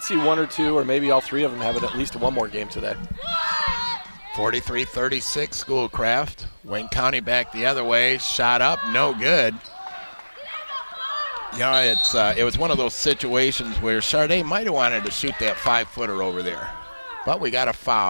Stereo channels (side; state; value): both; inverted; correlation -1.00